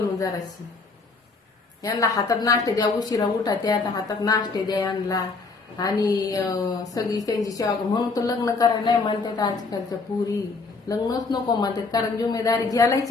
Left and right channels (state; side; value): quieter; right; 4.1 dB